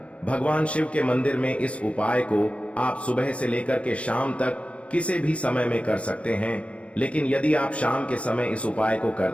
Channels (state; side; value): late; right; 0.062 ms